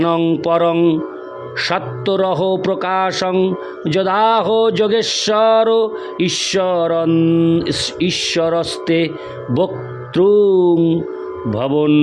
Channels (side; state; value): both; identical; correlation 1.00